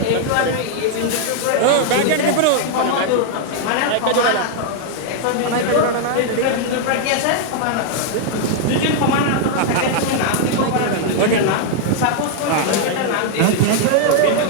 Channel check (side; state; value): both; different; correlation 0.00